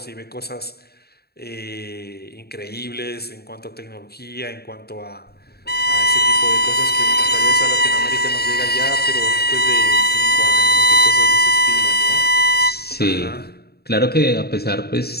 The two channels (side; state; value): right; late; 0.46 ms